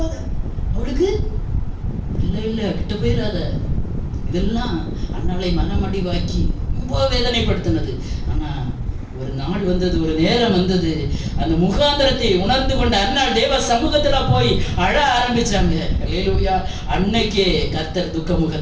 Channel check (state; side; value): identical; both; correlation 1.00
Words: அவளுக்கு இல்ல கிட்ட போயிடாத. இதெல்லாம் அன்னாலை மனமடிவாக்கி ரொம்ப வேதனைப்படுத்தினது. ஆனா ஒரு நாள் வந்தது, ஒரு நேரம் வந்தது, அந்த முகாந்திரத்தை உணர்ந்து கொண்ட அன்னாள் தேவ சமூகத்துல போய் அழ ஆரம்பிச்சாங்க. ஹல்லேலூயா. அன்னைக்கே கர்த்தர் துக்க